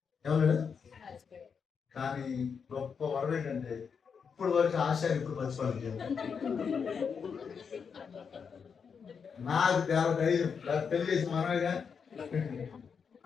ఏమన్నాడు. కానీ గొప్ప వరం ఏంటంటే ఇప్పుడు వరకు ఆశ ఇప్పుడు మర్చిపోలేదు. నాకు చాలా ధైర్యం. పెళ్లి చేసి మనగా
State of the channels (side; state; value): right; quieter; 6.3 dB